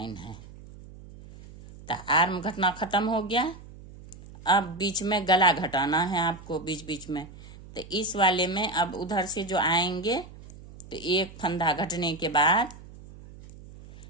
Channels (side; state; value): right; noise; hum, 18 dB below the sound